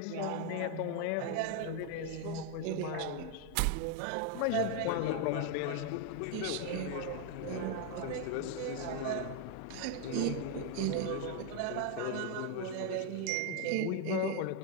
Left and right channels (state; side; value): different; both; correlation 0.01